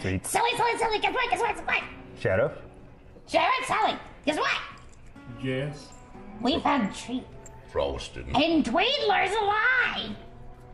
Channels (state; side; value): identical; both; correlation 1.00